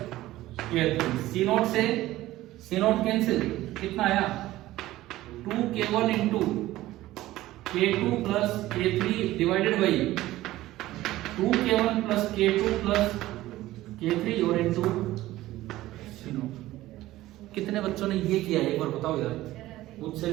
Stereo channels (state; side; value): quieter; left; 16.1 dB